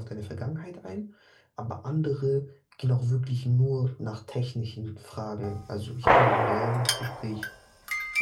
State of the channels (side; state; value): both; identical; correlation 1.00